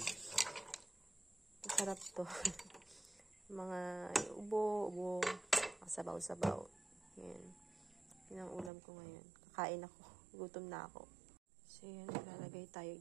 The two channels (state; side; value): drops out; left; at 8.7 s